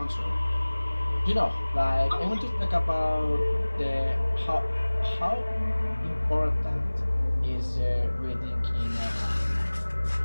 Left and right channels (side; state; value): both; inverted; correlation -1.00